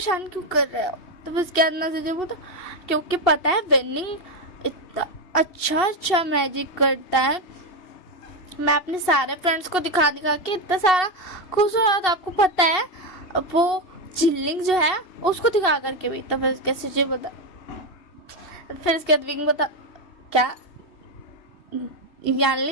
क्यों कर रहे हो। तो फिर उसके अंदर सिजुई बोलता क्योंकि पता है वेनिंग इतना अच्छा मैजिक करता है, मैं अपने सारे फ्रेंड्स को दिखा के इतना सारा खुश हो रहा था, आपको पता है वो जिल्लिंग जो है उसको दिखा करके भी। तो फिर कैसे जी बता, फिर इसके बाद विंग बता क्या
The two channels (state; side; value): late; right; 2.7 ms